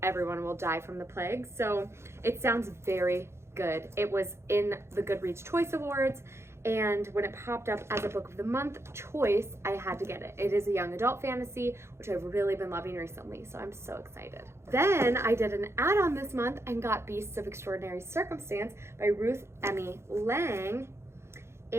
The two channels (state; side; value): late; left; 0.13 ms